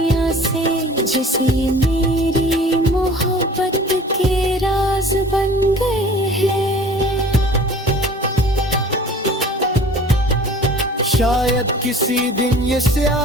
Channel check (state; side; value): normal; both; correlation 0.46